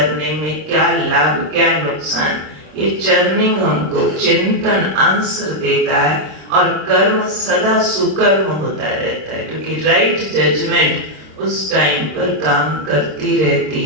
में क्या लाभ क्या नुकसान, ये चर्निंग हमको चिंतन आंसर देता है और कर्म सदा सुकर्म होता रहता है, क्योंकि राइट जजमेंट उस टाइम पर काम करती रहती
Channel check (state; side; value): late; left; 26 ms